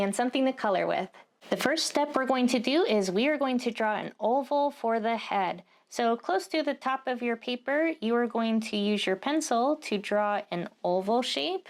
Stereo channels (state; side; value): identical; both; correlation 1.00